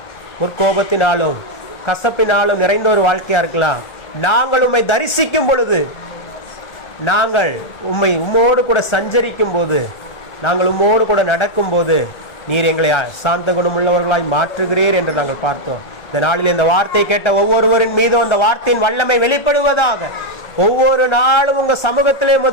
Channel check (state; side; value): late; right; 1.3 ms